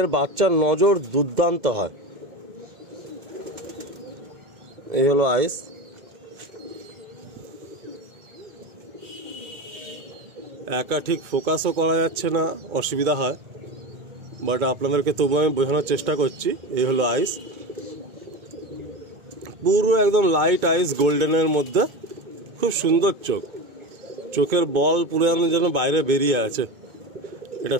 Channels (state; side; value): late; left; 2.2 ms